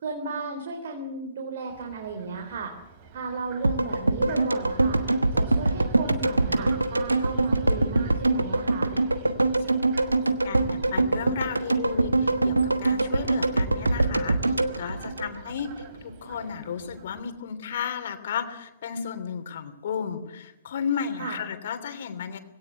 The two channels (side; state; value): both; inverted; correlation -0.83